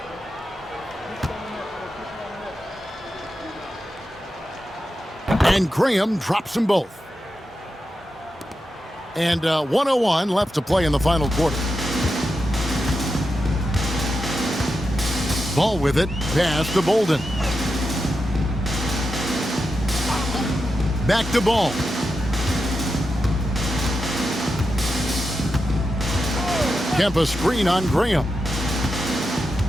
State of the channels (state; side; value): normal; both; correlation 0.88